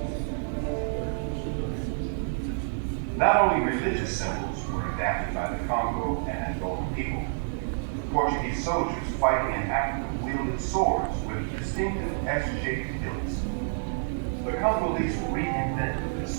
Not only religious symbols, soldiers fighting in Africa wielded swords with distinctive S-shaped hilts. The Congolese reinvented this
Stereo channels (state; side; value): silent; left; digital silence